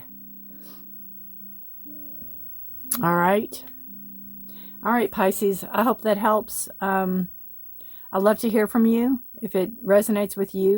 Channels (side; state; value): both; identical; correlation 1.00